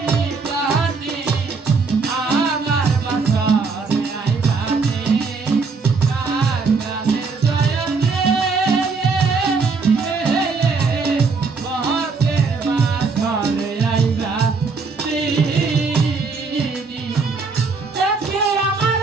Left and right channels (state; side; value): quieter; left; 4.5 dB